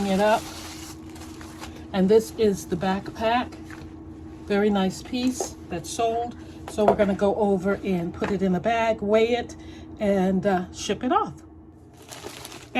it up. And this is the backpack. Very nice piece that's sold. So we're gonna go over and put it in a bag, weigh it, and ship it off.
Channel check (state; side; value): identical; both; correlation 1.00